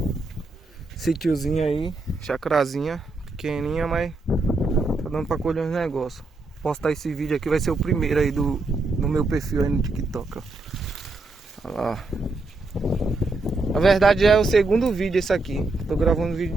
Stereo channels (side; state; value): left; quieter; 3.2 dB